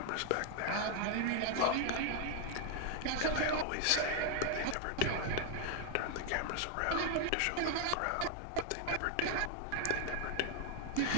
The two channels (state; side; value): different; both; correlation 0.00